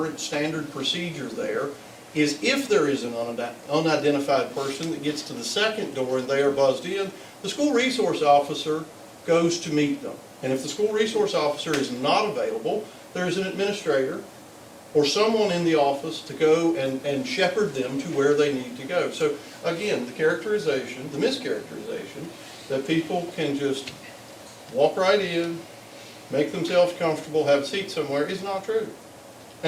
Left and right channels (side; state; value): both; identical; correlation 1.00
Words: standard procedure there is if there is an unidentified person that gets to the second door and they are buzzed in, the school resource officer goes to meet them. And if the school resource officer is not available, there is an administrator or someone in the office to go and shepherd them to where they need to go. So again, the characterization, the mischaracterization, that people can just walk right in, make themselves comfortable, have a seat somewhere is not true.